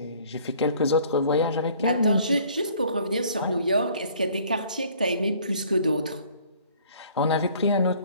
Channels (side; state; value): both; inverted; correlation -0.56